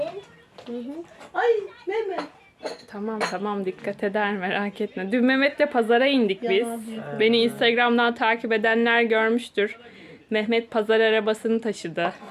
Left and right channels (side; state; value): both; identical; correlation 1.00